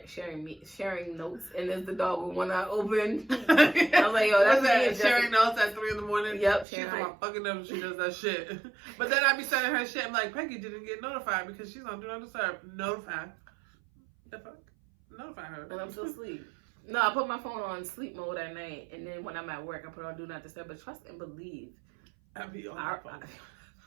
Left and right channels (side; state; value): left; drops out; at 6.7 s